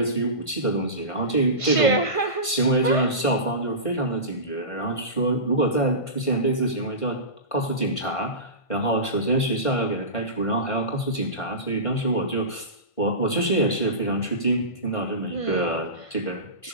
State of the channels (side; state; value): right; late; 1.5 ms